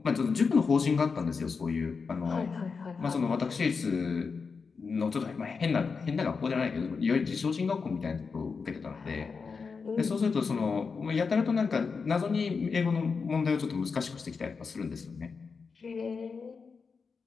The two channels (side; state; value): right; quieter; 5.1 dB